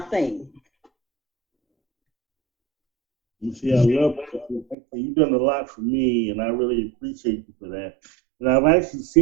You see, I love that. You've done a lot for me, and I really appreciate you for that. And I've actually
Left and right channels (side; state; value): left; drops out; at 4.8 s